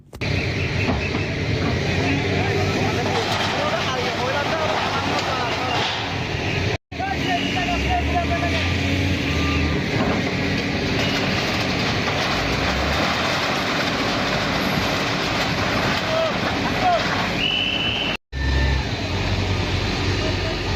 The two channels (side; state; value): both; identical; correlation 1.00